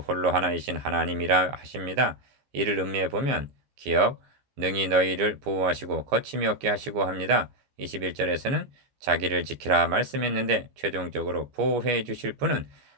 하나이신 하나님이라 하십니다. 이를 음미해 보면 기억 능히 너희를 보호하시고 거침이 없게 하시고 합니다. 21절에서는 자기를 지키라 말씀했는데 최종적으로 보호해 주실 분은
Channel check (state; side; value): late; left; 14 ms